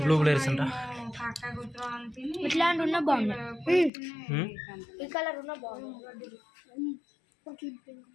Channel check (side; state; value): right; drops out; at 3.9 s